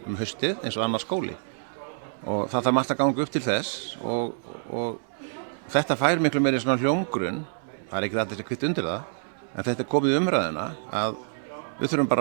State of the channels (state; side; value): silent; left; digital silence